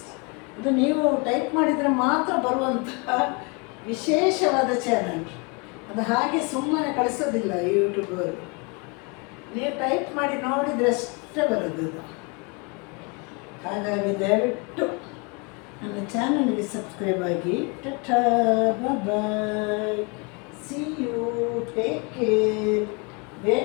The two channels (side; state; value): right; quieter; 31.7 dB